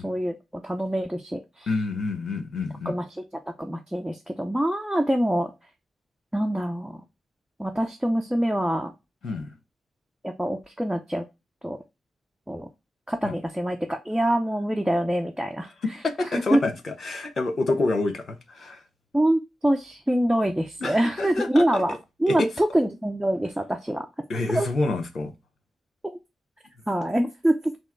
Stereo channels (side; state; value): both; normal; correlation 0.94